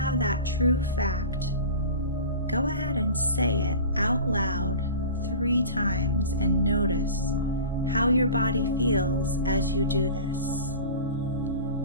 that true fact, go ahead and say it out loud 3 times and notice how your body feels as you do this.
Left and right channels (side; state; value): both; inverted; correlation -0.36